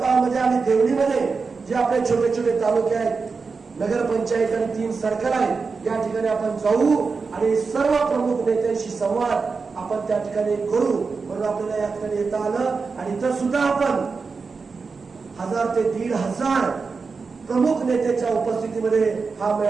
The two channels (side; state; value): left; quieter; 4.7 dB